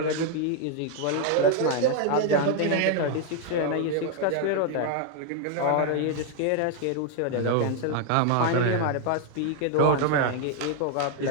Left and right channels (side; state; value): both; different; correlation 0.00